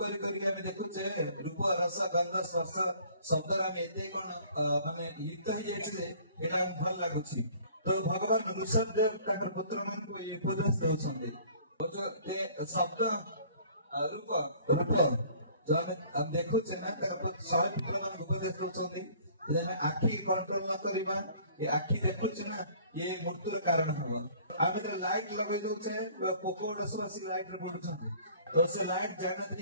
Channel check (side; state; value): both; inverted; correlation -0.53